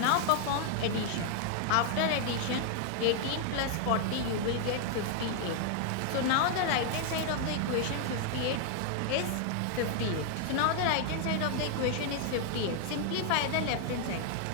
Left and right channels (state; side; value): different; both; correlation 0.00